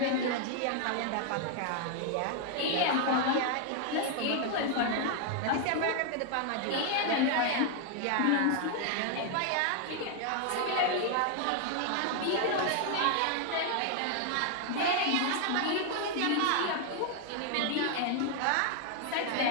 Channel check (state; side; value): different; both; correlation 0.00